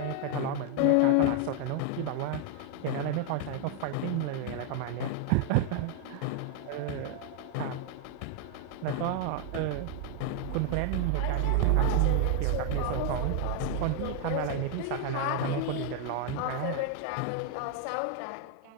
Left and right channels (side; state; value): both; different; correlation 0.00